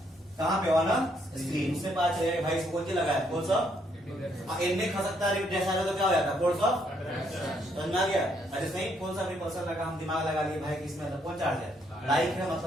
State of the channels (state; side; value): normal; both; correlation 0.72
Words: कहां पे, ऑन स्क्रीन। उससे पता चलेगा भाई इसको क्या लगाया, फोर्स ऑफ, इनमें खसकता है जैसा तो क्या हो जाता है, फोर्स ऑफ, समझ में आ गया। अरे नहीं, कौन सा रिपल्सन लगा, हम दिमाग लगा लिए भाई कि इसमें मतलब कौन चार्ज है, लाइक है,